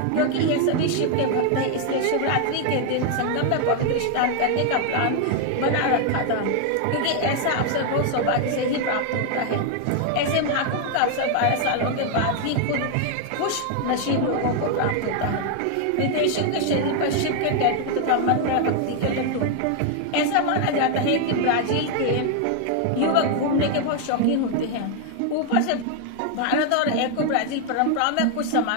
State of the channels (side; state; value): both; different; correlation 0.00